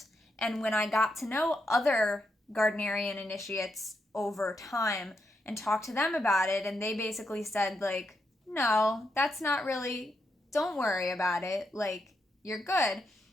And when I got to know other Gardnerian initiates over time and talked to them about it, and they basically said, like, no, that's not really, don't worry about it, like, you're good,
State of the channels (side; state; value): both; normal; correlation 0.82